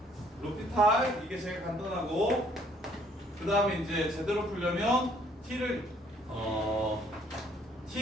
로피탈 이게 제일 간단하고 그 다음에 이제 제대로 풀려면 t를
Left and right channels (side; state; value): both; normal; correlation 0.63